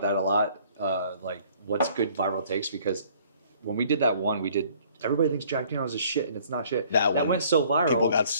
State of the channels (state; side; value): inverted; both; correlation -0.58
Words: that a lot, like what's good viral takes, because when we did that one, everybody thinks Jack Daniels is shit, and it's not shit. That went so viral. People got